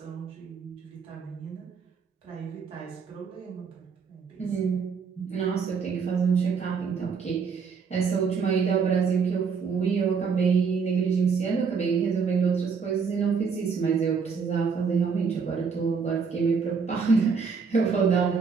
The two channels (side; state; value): left; quieter; 5.7 dB